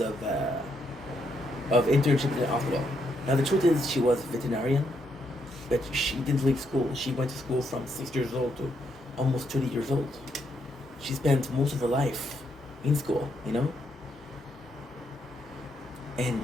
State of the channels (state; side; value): normal; both; correlation 0.77